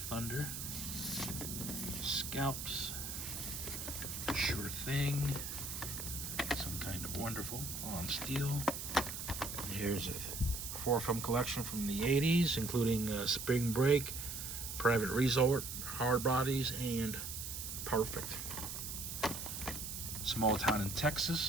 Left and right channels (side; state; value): right; noise; hiss, 6 dB below the sound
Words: Scalps, Sure Thing, Some Kind of Wonderful on Steel. Here's a 4-film collection from the 80s, including Spring Break, Private Resort, Hard Bodies, and Perfect. Small Town in